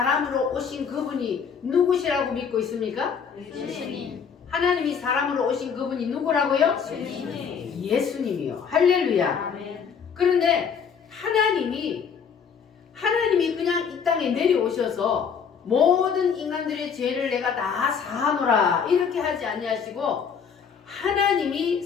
오신 그분이 누구시라고 믿고 있습니까? 예수님. 하나님이 사람으로 오신 그분이 누구라고요? 예수님이요. 할렐루야. 아멘. 그런데 하나님이 그냥 이 땅에 내려오셔서 모든 인간들의 죄를 내가 다 사하노라 이렇게 하지 아니하시고 하나님이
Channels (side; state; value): right; quieter; 6.6 dB